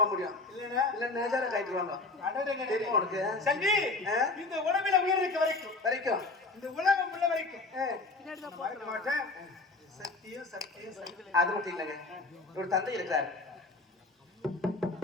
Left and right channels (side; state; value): right; quieter; 3.4 dB